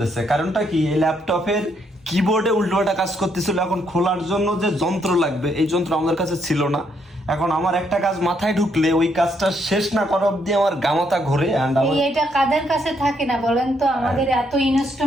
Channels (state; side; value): normal; both; correlation 0.74